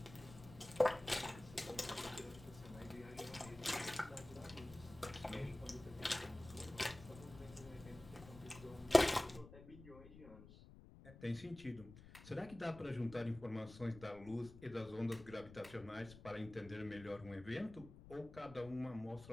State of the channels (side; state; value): left; noise; rumble, 17 dB below the sound